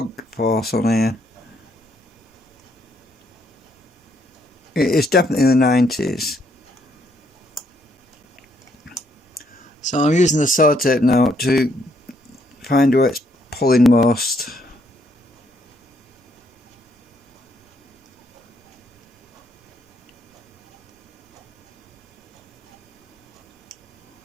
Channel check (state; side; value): normal; both; correlation 0.72